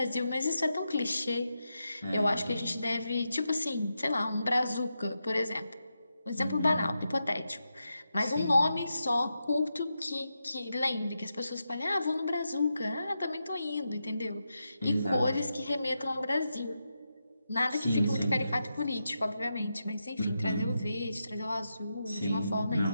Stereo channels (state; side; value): inverted; both; correlation -0.87